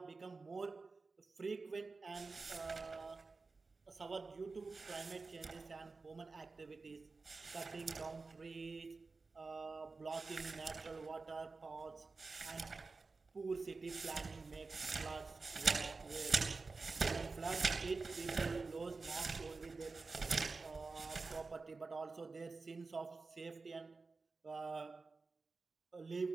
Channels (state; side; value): quieter; left; 4.0 dB